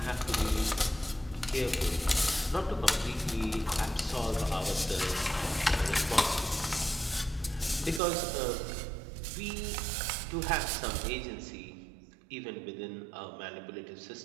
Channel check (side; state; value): left; drops out; at 8.0 s